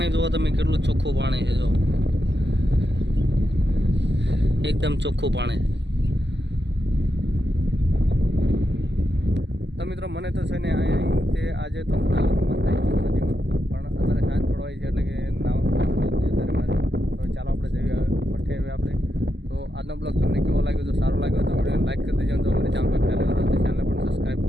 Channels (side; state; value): left; late; 0.51 ms